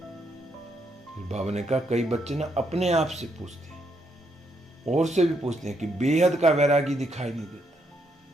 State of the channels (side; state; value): both; normal; correlation 0.76